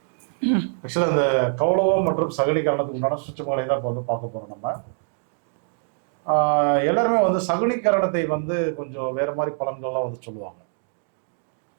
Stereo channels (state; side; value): silent; left; digital silence